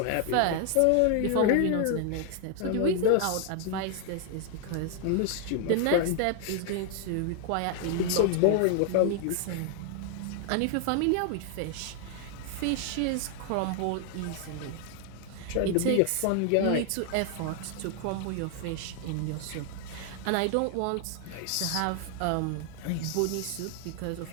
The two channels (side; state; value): both; different; correlation 0.00